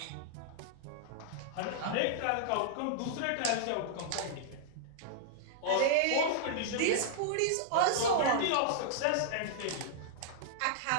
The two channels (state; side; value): different; both; correlation -0.02